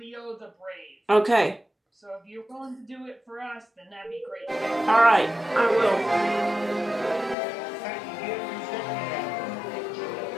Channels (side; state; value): right; drops out; at 7.4 s